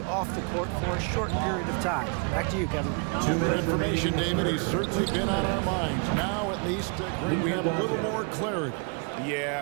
off the court for a short period of time. Back to you, Kevin. 2 minute information, David. He's certainly been on our minds. Now, at least, great, we have a little more clarity.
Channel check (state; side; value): quieter; left; 35.9 dB